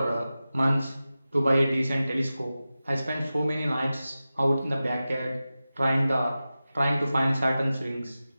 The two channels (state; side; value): inverted; both; correlation -0.95